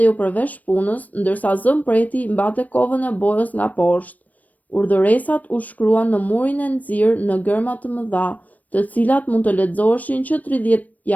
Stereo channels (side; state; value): right; late; 0.075 ms